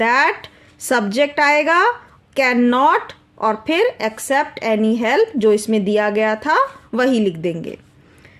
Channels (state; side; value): identical; both; correlation 1.00